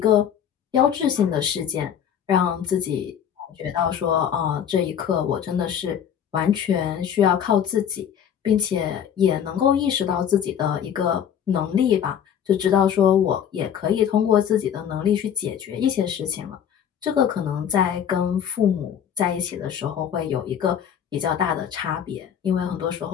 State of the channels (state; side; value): quieter; right; 8.9 dB